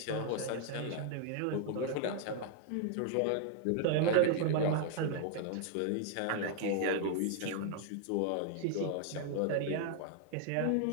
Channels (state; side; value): different; both; correlation 0.00